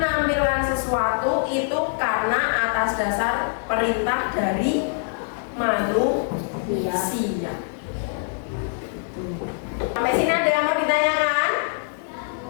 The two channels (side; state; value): right; silent; 63 dB below the other